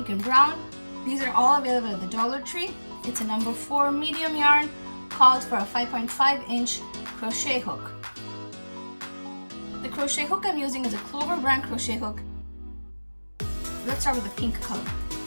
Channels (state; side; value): inverted; both; correlation -1.00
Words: and brown. These are all available at the Dollar Tree. It's a number 4 medium yarn, called for a 5.5-inch crochet hook. The crochet hook I'm using is a Clover brand crochet hook. Let's start with the pink color.